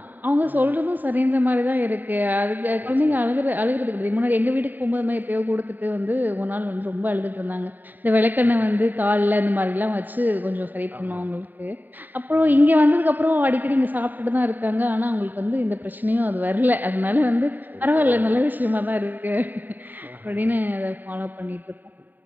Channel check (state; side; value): late; left; 0.089 ms